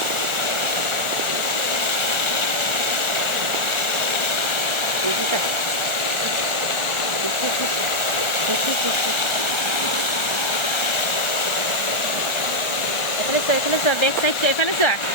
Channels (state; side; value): late; right; 1.3 ms